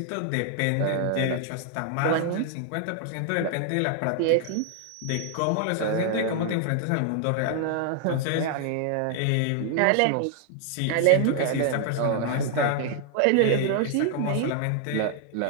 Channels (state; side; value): different; both; correlation 0.00